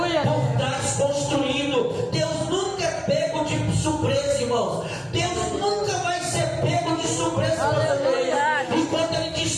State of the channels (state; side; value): identical; both; correlation 1.00